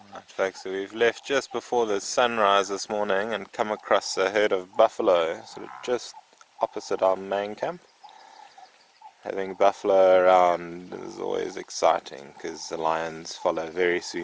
Right, folks, so we've left just before the sunrise this morning and come across a herd of buffalo sort of just opposite our main camp. Having buffalo around is always exciting because the lions follow very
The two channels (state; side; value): identical; both; correlation 1.00